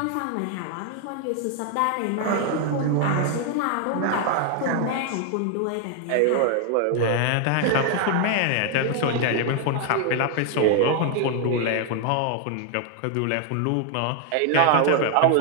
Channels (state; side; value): different; both; correlation 0.00